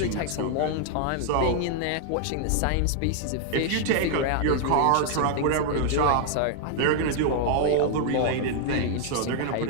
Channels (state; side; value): different; both; correlation 0.00